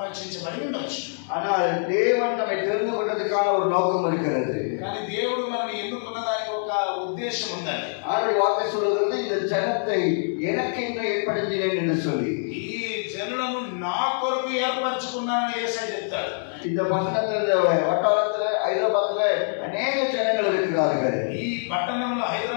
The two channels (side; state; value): right; silent; digital silence